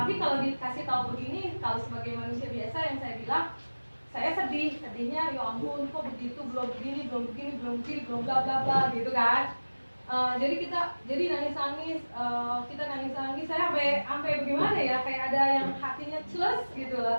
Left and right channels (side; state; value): both; inverted; correlation -1.00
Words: kalau dikasih tahu begini, kalau sebagai manusia biasa yang saya bilang, saya sedihnya ya ampun kok begitu, belum begini, belum bla bla bla gitu kan. Jadi nangis, kita nangis, saya sampai bagaimana ya, kayak ada yang hatinya celus gitu